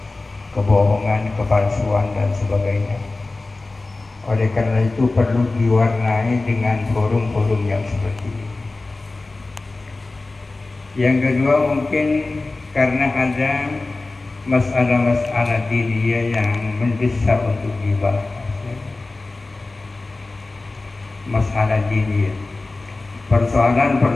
kebohongan, kepalsuan dan sebagainya. Oleh karena itu perlu diwarnai dengan forum-forum yang seperti ini. Yang kedua, mungkin karena ada masalah-masalah diniyah yang mendesak untuk dibahas. Masalah diniyah,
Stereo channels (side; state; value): right; quieter; 3.3 dB